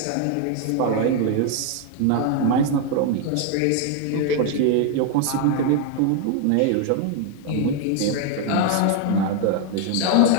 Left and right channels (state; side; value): different; both; correlation 0.00